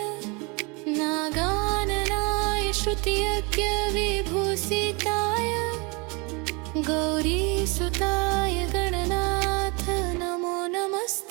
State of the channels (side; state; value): left; quieter; 29.8 dB